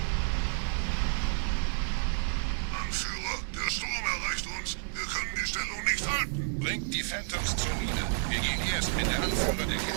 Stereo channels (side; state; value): left; silent; digital silence